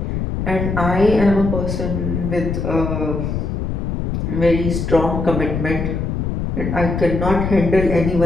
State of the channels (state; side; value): noise; left; rumble, 2 dB below the sound